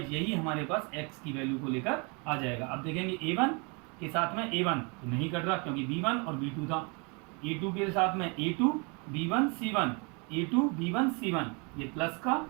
यही हमारे पास x की वैल्यू को लेकर आ जाएगा। अब देखेंगे a1 के साथ में a1 तो नहीं कट रहा क्योंकि b1 और b2 था, a2 के साथ में a2 b1 c1, a2 b1 c1, ये प्लस का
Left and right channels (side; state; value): left; quieter; 32.2 dB